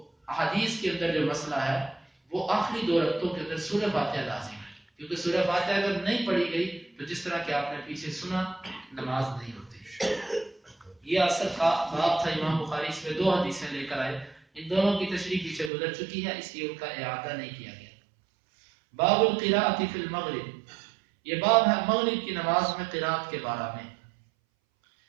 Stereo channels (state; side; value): drops out; left; at 15.7 s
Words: احادیث کے اندر جو مسئلہ ہے وہ آخری دو رکعتوں کے اندر سورہ فاتحہ لازم ہے، کیونکہ سورہ فاتحہ اگر نہیں پڑھی گئی تو جس طرح کہ آپ نے پیچھے سنا، نماز نہیں ہوتی. یہ اصل کا باب تھا. امام بخاری اس میں دو حدیثیں لے کر آئے، ان دونوں کی تشریح پیچھے گزر چکی ہے، اس لیے ان کا اعادہ نہیں کیا گیا. باب القراءۃ فی المغرب، یہ باب ہے مغرب کی نماز میں قراءت کے بارے میں.